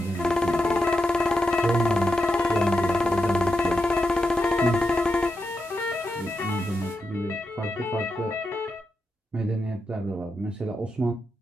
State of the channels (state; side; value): normal; both; correlation 0.86